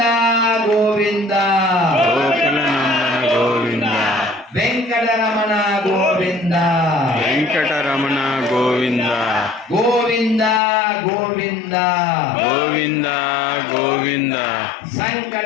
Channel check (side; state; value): right; drops out; at 10.6 s